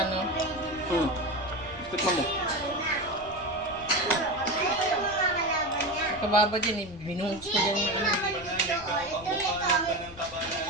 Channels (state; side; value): noise; left; rumble, 19 dB below the sound